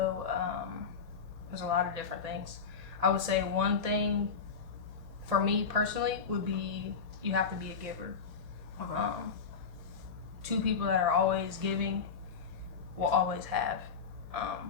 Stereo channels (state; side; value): quieter; right; 5.8 dB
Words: there's a lot of different things. I would say one thing for me personally would be you have to be a giver. Okay. Two people that are always giving will always have.